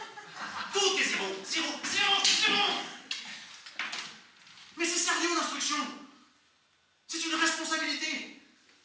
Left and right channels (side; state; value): both; identical; correlation 1.00